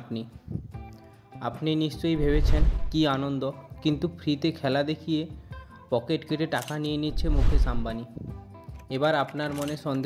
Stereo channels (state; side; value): identical; both; correlation 1.00